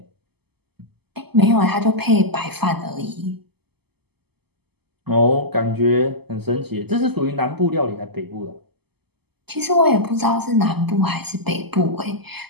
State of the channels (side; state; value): left; late; 0.97 ms